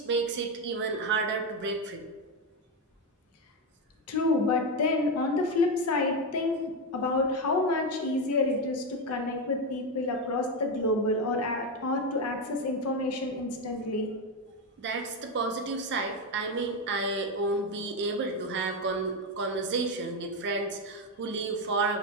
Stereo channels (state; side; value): normal; both; correlation 0.10